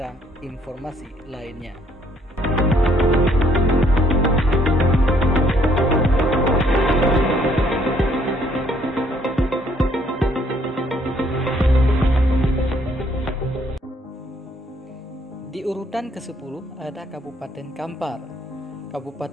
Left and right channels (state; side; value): normal; both; correlation 0.66